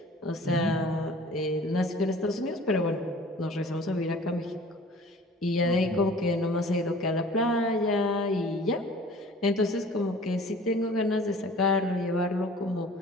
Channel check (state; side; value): normal; both; correlation 0.47